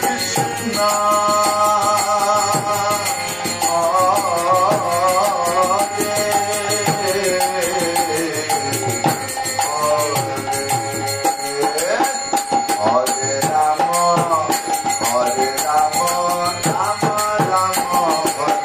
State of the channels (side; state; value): both; identical; correlation 1.00